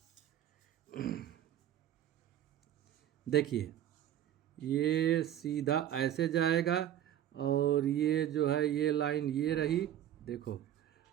देखिए ये सीधा ऐसे जाएगा और ये जो है ये लाइन ये रही, देखो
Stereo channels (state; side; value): quieter; left; 11.3 dB